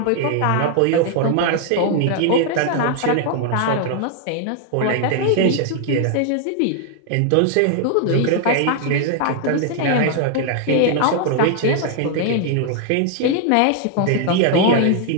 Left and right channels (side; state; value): both; different; correlation 0.00